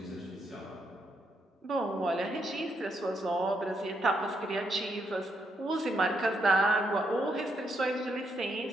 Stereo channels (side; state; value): both; normal; correlation 0.78